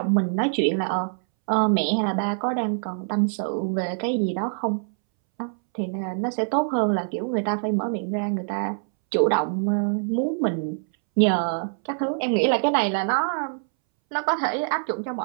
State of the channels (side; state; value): left; silent; 62 dB below the other